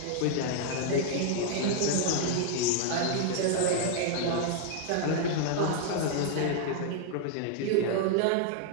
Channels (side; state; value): both; different; correlation -0.01